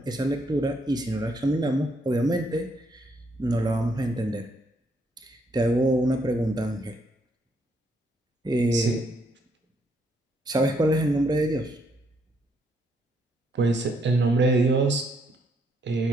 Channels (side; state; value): both; normal; correlation 0.73